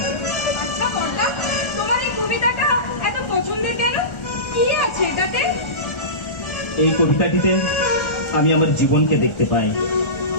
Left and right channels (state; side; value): late; right; 1.4 ms